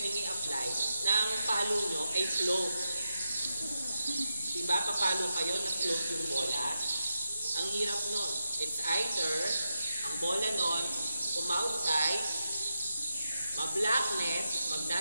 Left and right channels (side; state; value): both; inverted; correlation -0.87